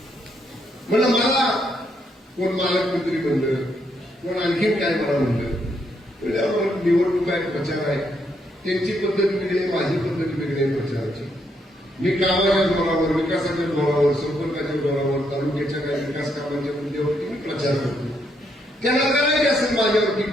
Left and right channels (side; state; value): both; normal; correlation 0.76